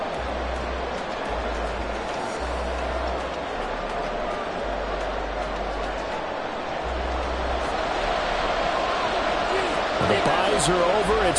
The byes are over.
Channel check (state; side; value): identical; both; correlation 1.00